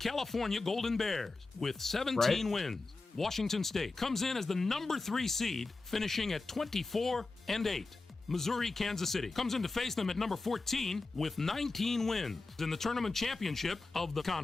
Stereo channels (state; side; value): quieter; right; 3.6 dB